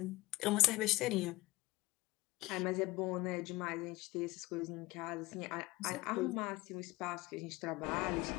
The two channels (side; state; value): right; quieter; 20.3 dB